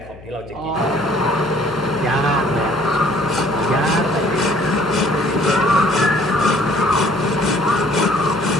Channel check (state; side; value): noise; left; hum, 20 dB below the sound